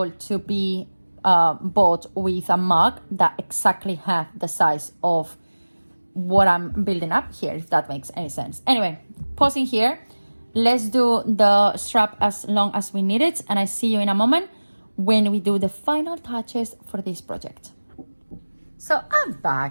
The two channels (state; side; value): inverted; both; correlation -1.00